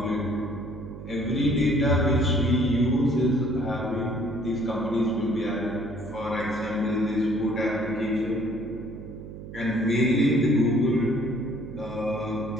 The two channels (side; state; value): right; noise; hum, 12 dB below the sound